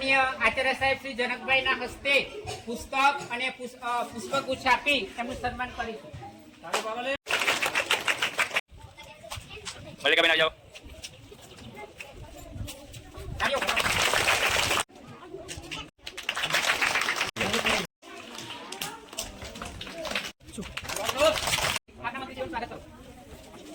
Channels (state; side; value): identical; both; correlation 1.00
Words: આચાર્ય સાહેબ શ્રી જનકભાઈના હસ્તે પુસ્તક અને પુષ્પગુચ્છ આપી એમનું સન્માન કરીશું. મલ્લિકાબેન આવી જાઓ.